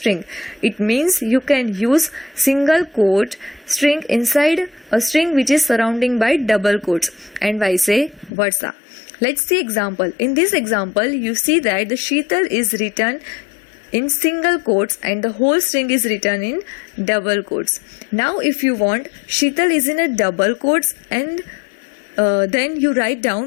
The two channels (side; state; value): right; drops out; at 8.3 s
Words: It means you can use single quote string inside a string which is surrounding by double quotes and vice versa. Let's see example. In this example, you see that the Sheetal is written in single quotes and the whole string is written in double quotes. Now if you want Sheetal is in a double quotes and then you write